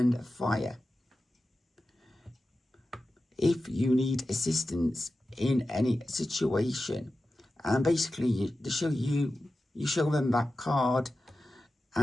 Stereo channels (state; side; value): normal; both; correlation 0.93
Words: fire. If you need assistance in any situation, and basically you show them that card